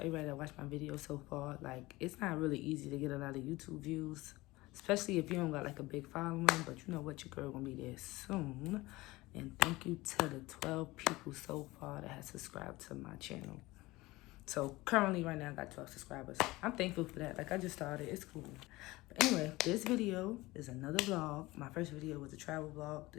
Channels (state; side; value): quieter; right; 20.1 dB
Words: that watched my video so far. Like, it's not really easy to get a lot of YouTube views, especially if you don't got like a big following, but you know what, your girl gonna be there soon. And thank you to the 12 people so far that have subscribed to my channel. So currently right now I got 12 subscribers. I'm thankful for that. Like, I just started, it's cool. But anyway, this video is another vlog. My first video was a travel vlog.